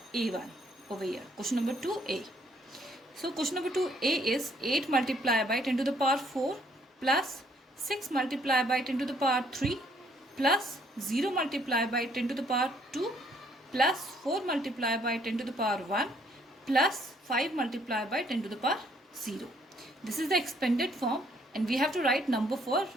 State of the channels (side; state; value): both; normal; correlation 0.66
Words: A1 over here. Question number 2A. So question number 2A is 8 multiplied by 10 to the power 4 plus 6 multiplied by 10 to the power 3 plus 0 multiplied by 10 to the power 2 plus 4 multiplied by 10 to the power 1 plus 5 multiplied by 10 to the power 0. This is the expanded form and we have to write number for